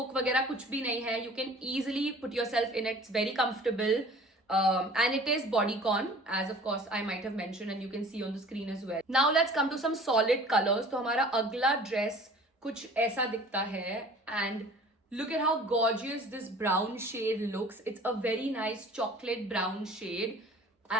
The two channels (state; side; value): normal; both; correlation 0.47